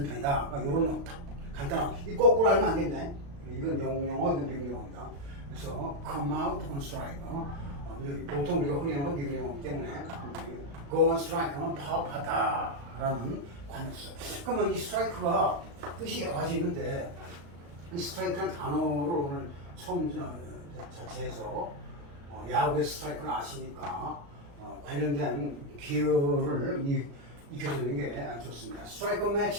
편이다. 그러니까 이런 간단한 이 거꾸로 알면 안 됩니다. 이건 영국 용어, 이건 미국 용어입니다. 그래서 come out on strike. 보통 우리가 흔히 하는 건 미국 용어이기 때문에 go on strike 하면 파업하다라는 관어죠. 그러면 이 스트라이크가 뜻이 여러 가지 있는데 이 스트라이크라는 단어를 오늘 처음 자체에서 야구의 스트라이크를 아시니까 관련된 기여를 익혀주는 게 좋습니다. 스트라이크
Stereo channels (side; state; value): left; late; 35 ms